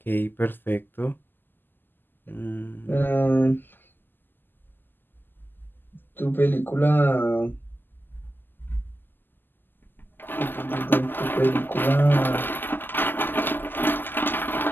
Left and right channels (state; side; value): late; right; 0.092 ms